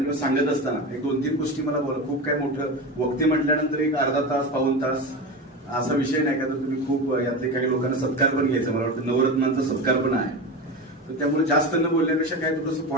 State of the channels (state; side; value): normal; both; correlation 0.24